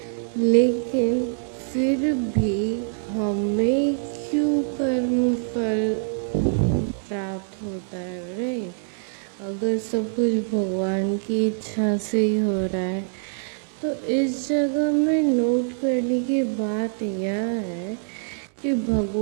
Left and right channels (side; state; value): left; silent; digital silence